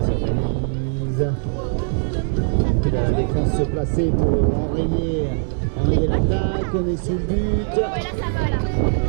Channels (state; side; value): silent; left; digital silence